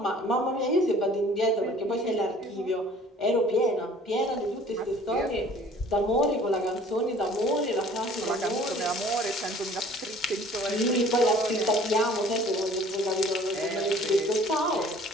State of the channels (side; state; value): both; normal; correlation 0.52